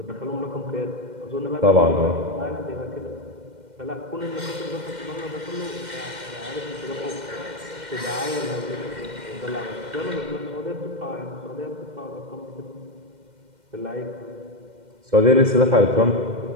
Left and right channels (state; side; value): late; left; 2.1 ms